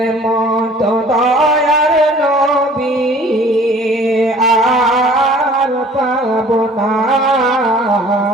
মতো দয়ার নবী আর পাব না।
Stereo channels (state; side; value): normal; both; correlation 0.51